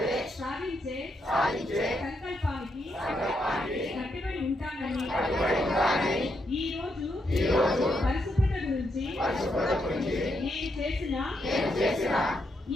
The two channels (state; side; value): normal; both; correlation 0.80